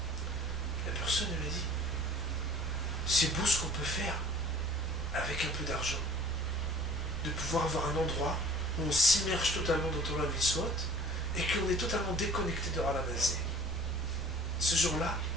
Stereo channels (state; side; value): normal; both; correlation 0.49